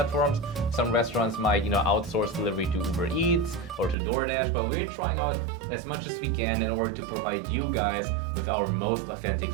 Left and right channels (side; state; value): left; drops out; at 4.0 s